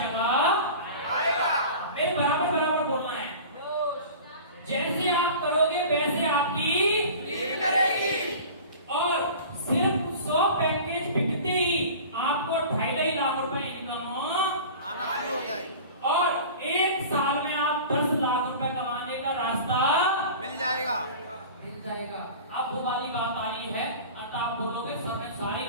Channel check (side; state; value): both; inverted; correlation -0.38